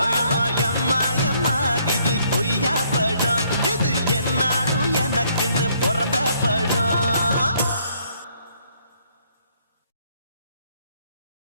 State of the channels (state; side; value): inverted; both; correlation -0.67